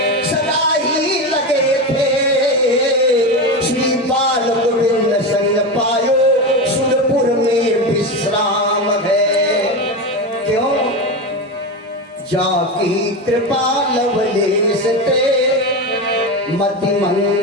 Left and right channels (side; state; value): both; normal; correlation 0.19